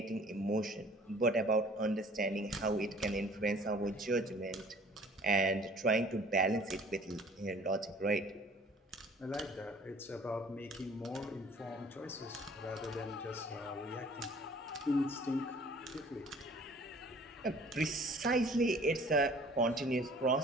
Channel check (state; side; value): normal; both; correlation 0.52